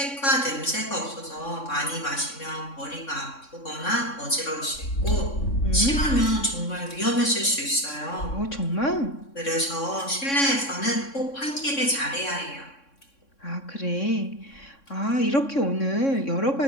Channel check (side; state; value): right; late; 3.6 ms